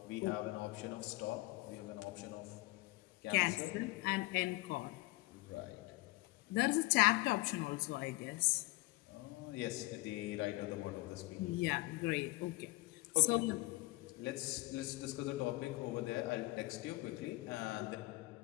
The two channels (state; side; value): quieter; right; 21.5 dB